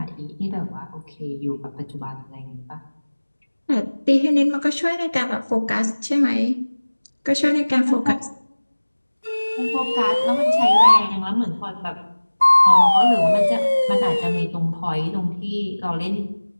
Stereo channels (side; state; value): both; inverted; correlation -1.00